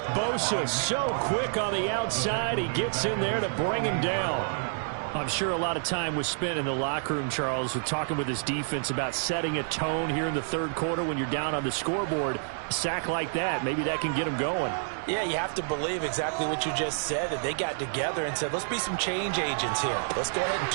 Bosa so quick on the outside. He gets in there to bring him down. I'm sure a lot of time was spent in the locker room, Charles, with talking with his defense about setting a tone here in the 3rd quarter when you're down on the scoreboard. A sack like that, maybe that can get them going. Yeah, you have to believe exactly what you just said, that they got together and said, let's be some change agents here. Let's go ahead and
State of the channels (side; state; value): left; silent; 59 dB below the other